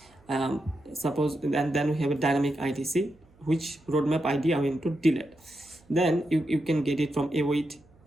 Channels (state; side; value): noise; right; hum, 30 dB below the sound